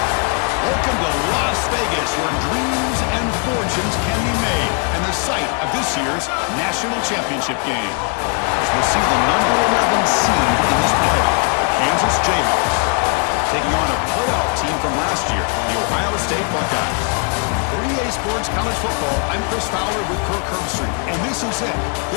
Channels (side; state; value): right; quieter; 38.8 dB